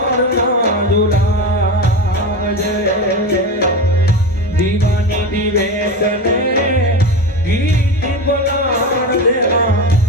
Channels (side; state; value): both; normal; correlation 0.23